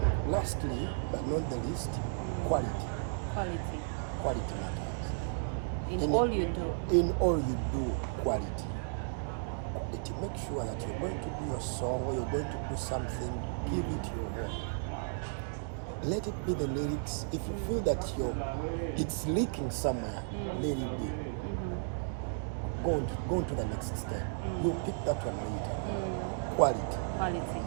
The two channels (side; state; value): left; silent; digital silence